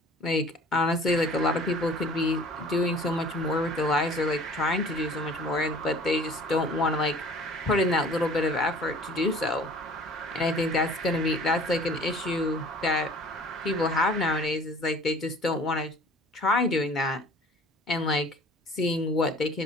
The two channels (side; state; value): both; normal; correlation 0.48